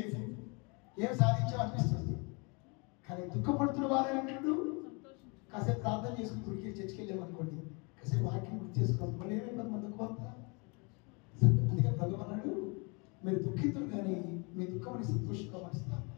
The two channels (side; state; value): right; quieter; 31.4 dB